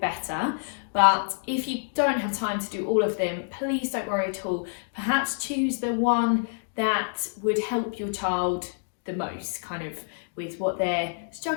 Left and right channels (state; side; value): silent; right; digital silence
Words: But if you don't have time to do all of them, please don't worry at all. Perhaps choose the one that would help your child the most, kind of with what they're